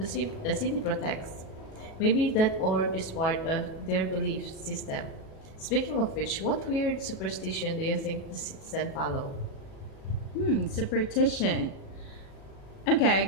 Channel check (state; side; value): late; right; 37 ms